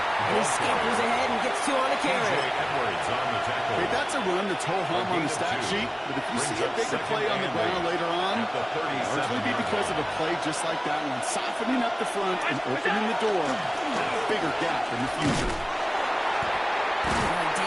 he scampers ahead and gets 2 on the carry. J. Edwards on the tackle. Hey, that's a run that's ho-hum on the stat sheet, but if you see a bigger play on the ground later on, At the 37 largely be because of a play just like that one, softening up the front and opening the door for a bigger gap in the future.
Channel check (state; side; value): identical; both; correlation 1.00